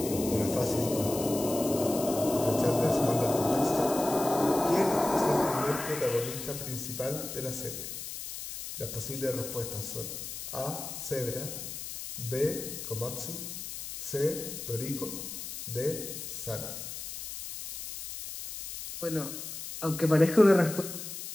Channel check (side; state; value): left; noise; hiss, 8 dB below the sound